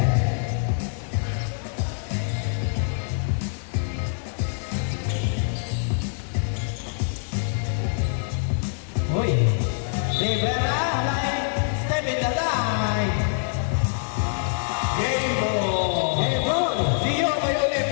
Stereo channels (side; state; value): right; silent; 62 dB below the other